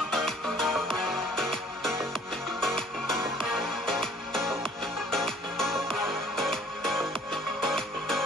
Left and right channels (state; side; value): normal; both; correlation 0.55